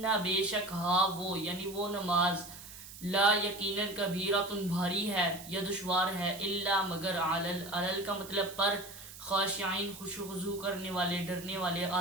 بے شک ہا وہ یعنی وہ نماز، لا یقیناً کبیرۃ بھاری ہے یا دشوار ہے، الا مگر علل کا مطلب پر، خاشعین خشوع و خضوع کرنے والے، ڈرنے والے،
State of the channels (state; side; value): noise; right; hiss, 15 dB below the sound